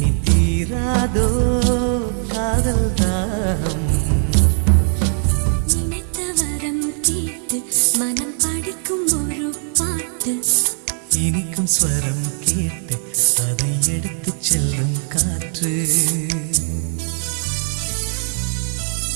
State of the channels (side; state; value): left; silent; 55 dB below the other